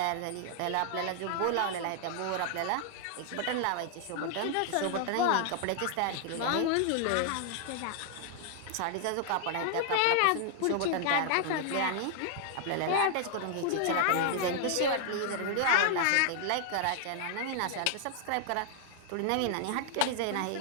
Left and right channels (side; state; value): both; different; correlation 0.00